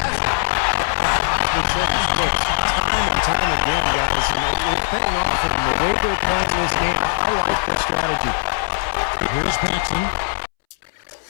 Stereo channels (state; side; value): silent; right; 66 dB below the other